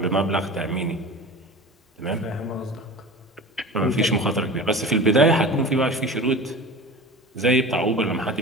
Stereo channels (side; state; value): both; normal; correlation 0.35